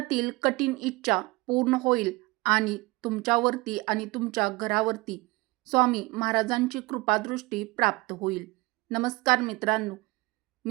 कठीण इच्छा पूर्ण होईल आणि तुमच्यावरती आणि तुमच्या घरावरती स्वामी महाराजांची कृपादृष्टी प्राप्त होईल. नमस्कार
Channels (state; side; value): quieter; left; 23.0 dB